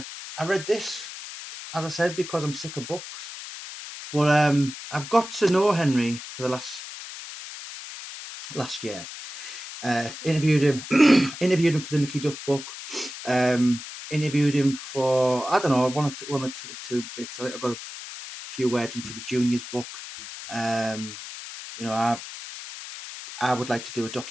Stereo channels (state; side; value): noise; left; hiss, 11 dB below the sound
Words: read this, as I said, because I'm sick of books. But I've got to know Henry for the last year. Interviewed him, interviewed him for the Mickey Duff book. Interviewed him for, I don't know, one or two bits. I think I got a few words in for the juniors book. Um, I would like to do a